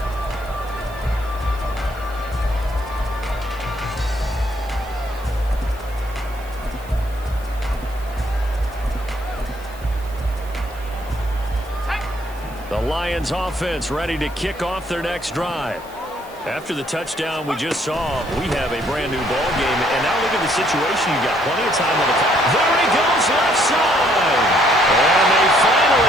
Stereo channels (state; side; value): noise; right; hiss, 23 dB below the sound